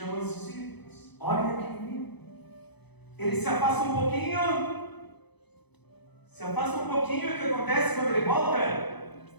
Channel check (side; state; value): right; late; 0.98 ms